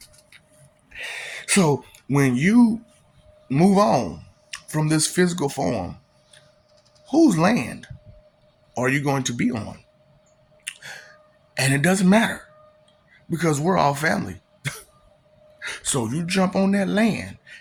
So when you move on from this physical form, whose land are you going to be on? And it doesn't matter because we're all family. So you jump on that land,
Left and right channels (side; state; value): both; identical; correlation 1.00